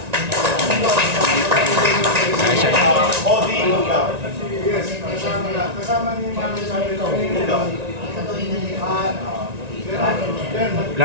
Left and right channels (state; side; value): late; left; 1.9 ms